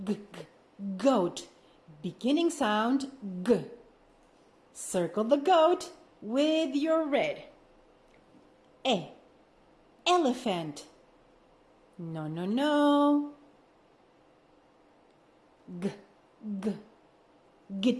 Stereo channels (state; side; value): identical; both; correlation 1.00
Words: G, G. Goat. Beginning sound G. Circle the goat with your red. Elephant. No, no, no. G, G.